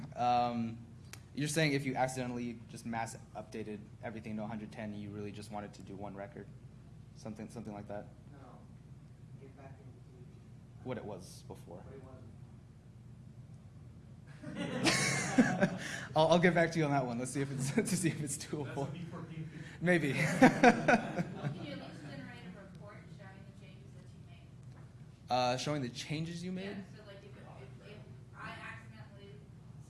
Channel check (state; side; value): identical; both; correlation 1.00